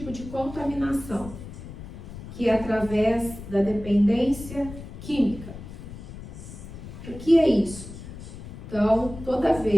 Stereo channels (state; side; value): noise; left; rumble, 13 dB below the sound